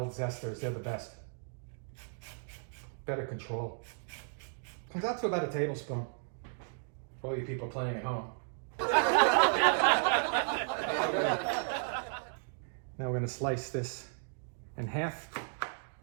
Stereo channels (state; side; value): silent; left; 55 dB below the other